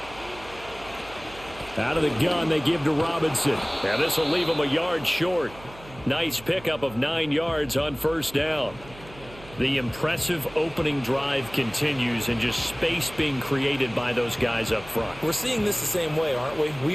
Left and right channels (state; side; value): noise; right; hum, 19 dB below the sound